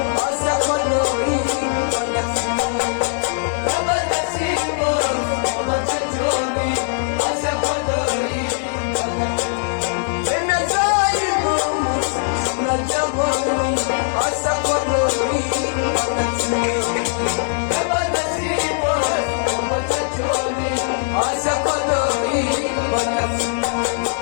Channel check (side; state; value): right; silent; digital silence